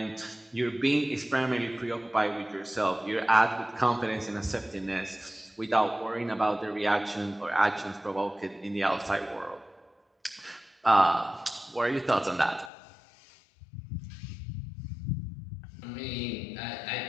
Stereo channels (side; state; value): right; drops out; at 12.7 s